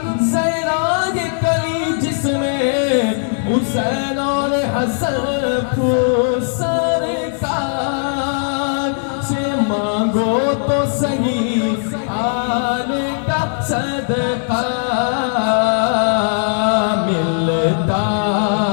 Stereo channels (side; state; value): right; silent; digital silence